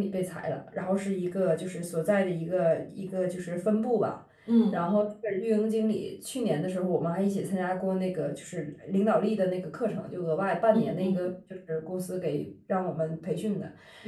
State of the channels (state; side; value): identical; both; correlation 1.00